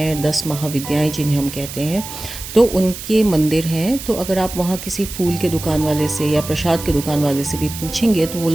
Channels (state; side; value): noise; right; hiss, 10 dB below the sound